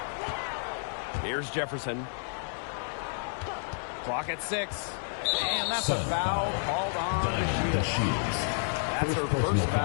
Here's Jefferson. Clock at 6. And that's a foul called on the Shields. That's her first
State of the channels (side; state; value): right; silent; 58 dB below the other